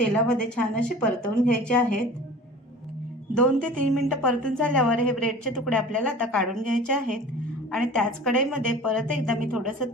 छान असे परतवून घ्यायचे आहेत। 2 ते 3 मिनिटं परतून झाल्यावर हे ब्रेडचे तुकडे आपल्याला आता काढून घ्यायचे आहेत आणि त्याच कढईमध्ये परत एकदा मी थोडंसं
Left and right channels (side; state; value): both; normal; correlation 0.41